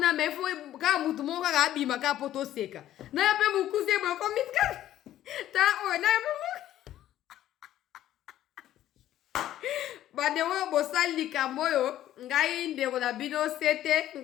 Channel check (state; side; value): quieter; right; 12.7 dB